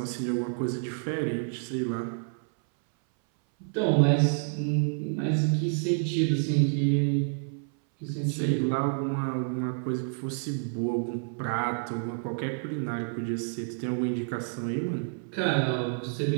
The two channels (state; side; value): silent; left; 59 dB below the other